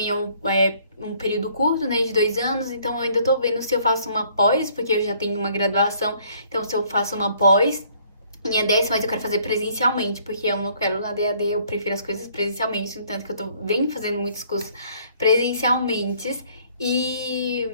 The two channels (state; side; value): inverted; both; correlation -0.61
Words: é um período curto, né, de 2 anos, então eu ainda tô vendo se eu faço uma pós, porque eu já tenho uma graduação, então se eu faço uma pós em ADS, mas eu quero fazer presencialmente, porque eu não quero na DAD, eu prefiro as coisas presencialmente, no tanto que eu venho fazendo muitos cursos presencialmente. E